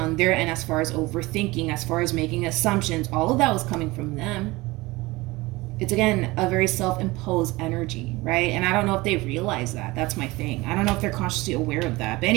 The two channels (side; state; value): left; quieter; 21.4 dB